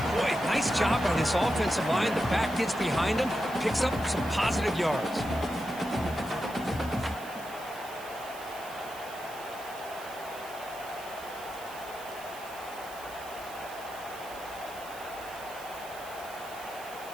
boy, nice job by this offensive line. The back gets behind him, picks up some positive yards.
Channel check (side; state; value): right; noise; hiss, 16 dB below the sound